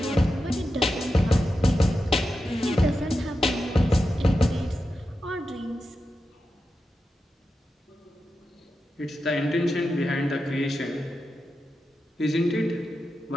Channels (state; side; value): normal; both; correlation 0.90